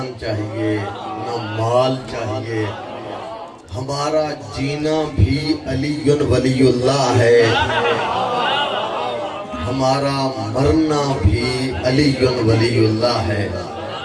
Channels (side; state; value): both; identical; correlation 1.00